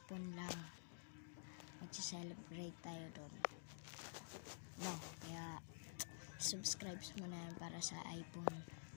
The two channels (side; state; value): right; silent; digital silence